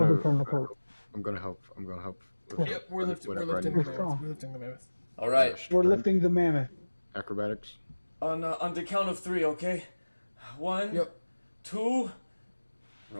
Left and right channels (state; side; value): inverted; both; correlation -1.00